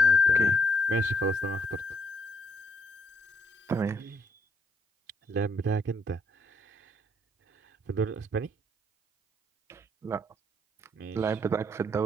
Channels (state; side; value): normal; both; correlation 0.71